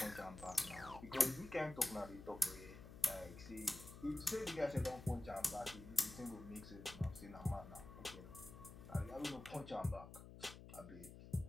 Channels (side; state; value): left; noise; hum, 14 dB below the sound